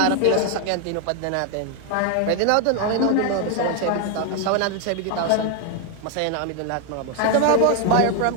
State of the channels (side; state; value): both; different; correlation 0.01